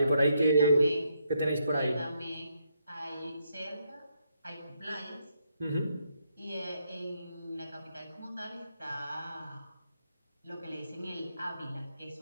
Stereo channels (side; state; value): both; inverted; correlation -0.77